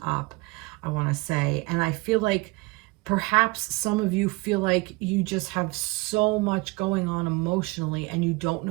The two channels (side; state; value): left; quieter; 24.1 dB